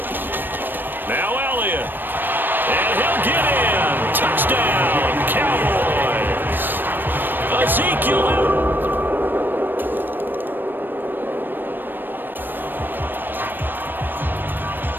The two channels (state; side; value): late; left; 0.094 ms